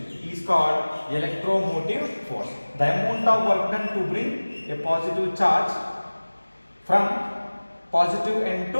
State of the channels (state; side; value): inverted; both; correlation -1.00